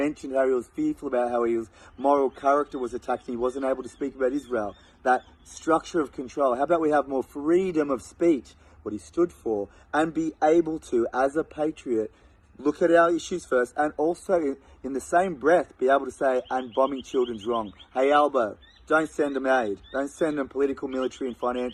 how he was fearful about how his moral character was attacked and he wasn't able to speak about Israel, that structure of control. How about we have more freedom of speech, what he stood for, and be able to, as a patriot, look at our issues first, and also in the same breath be able to say, and bombing children's wrong. Hey Albo, don't send them aid. Don't send them political, military and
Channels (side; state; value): both; identical; correlation 1.00